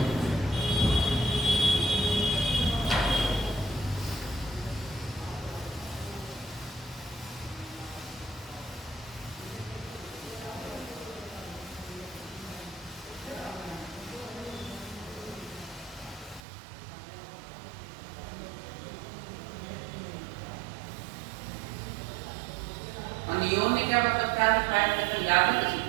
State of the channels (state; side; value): drops out; left; at 16.4 s